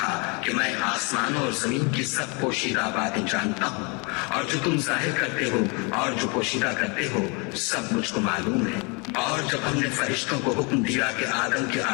کہ میں آسمانوں اور زمین کی سب پوشیدہ باتیں جانتا ہوں، اور جو تم ظاہر کرتے ہو اور جو پوشیدہ کرتے ہو سب مجھ کو معلوم ہے۔ اور جب ہم نے فرشتوں کو حکم دیا کہ آدم کے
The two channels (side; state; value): right; quieter; 31.5 dB